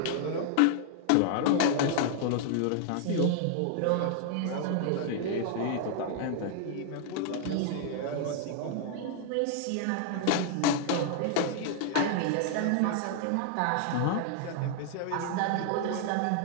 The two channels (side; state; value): both; different; correlation 0.00